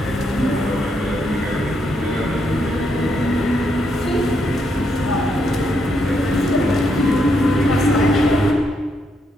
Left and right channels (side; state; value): both; normal; correlation 0.78